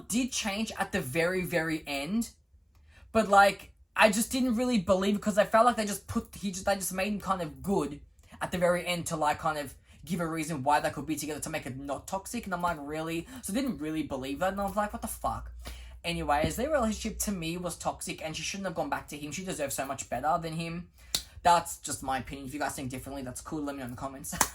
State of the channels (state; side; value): identical; both; correlation 1.00